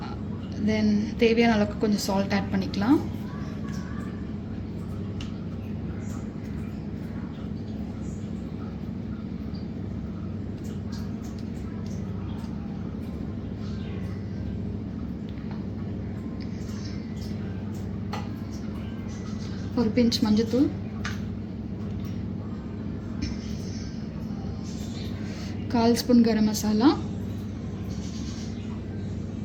தென் தேவையான அளவுக்கு கொஞ்சம் சால்ட் ஆட் பண்ணிக்கலாம். ஒரு பிஞ்ச் மஞ்சத்தூள், கால் ஸ்பூன் கரம் மசாலா,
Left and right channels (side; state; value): both; identical; correlation 1.00